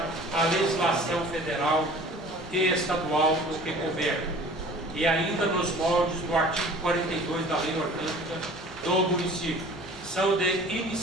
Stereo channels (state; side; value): noise; left; rumble, 23 dB below the sound